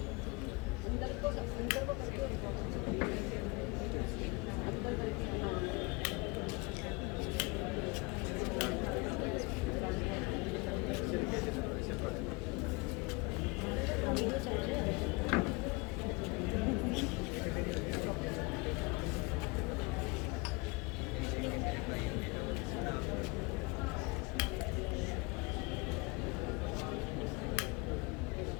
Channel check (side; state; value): right; quieter; 27.0 dB